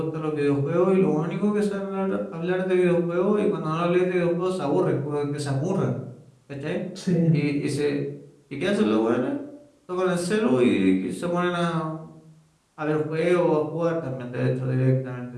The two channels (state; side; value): identical; both; correlation 1.00